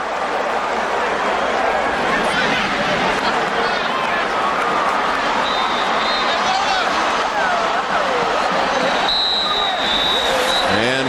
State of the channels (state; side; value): identical; both; correlation 1.00